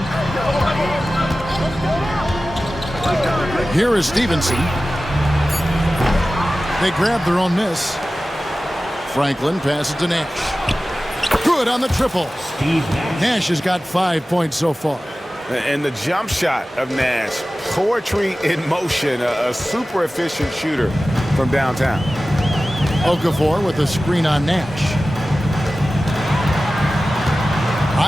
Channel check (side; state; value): both; normal; correlation 0.96